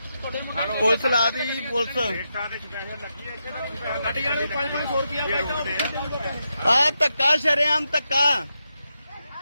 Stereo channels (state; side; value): inverted; both; correlation -0.85